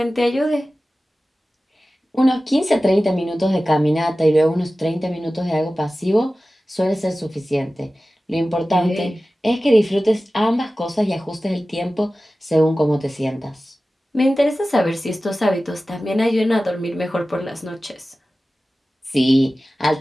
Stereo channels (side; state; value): both; normal; correlation 0.96